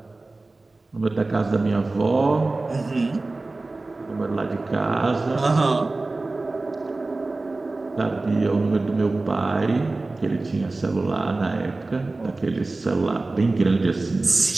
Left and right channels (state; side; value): quieter; left; 3.3 dB